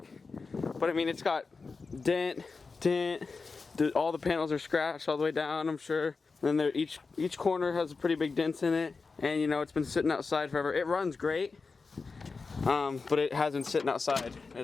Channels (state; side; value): quieter; right; 4.4 dB